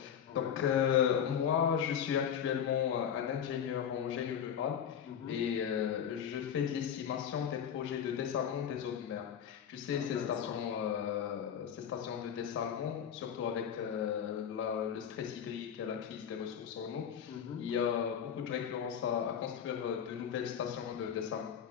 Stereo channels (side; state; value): right; quieter; 8.5 dB